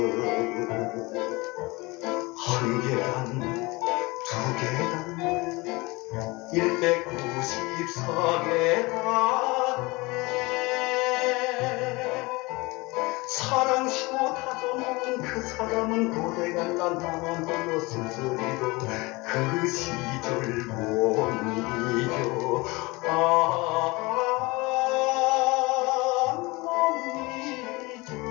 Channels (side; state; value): right; quieter; 23.9 dB